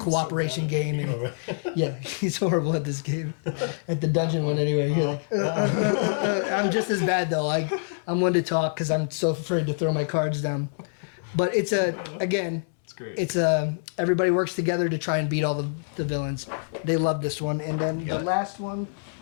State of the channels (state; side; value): silent; right; 61 dB below the other